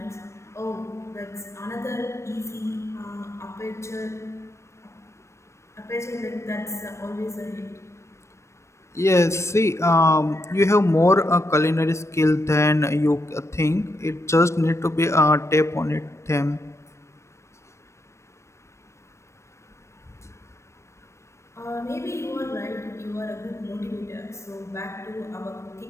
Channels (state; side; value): late; right; 0.13 ms